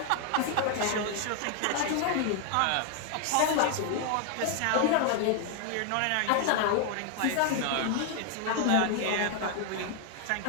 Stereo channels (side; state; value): both; different; correlation 0.00